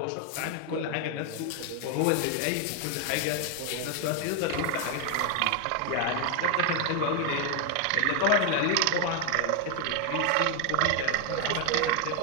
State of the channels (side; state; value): both; different; correlation 0.01